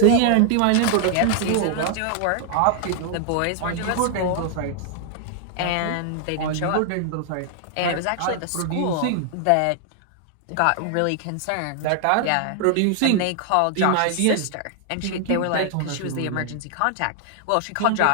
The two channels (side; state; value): both; different; correlation 0.00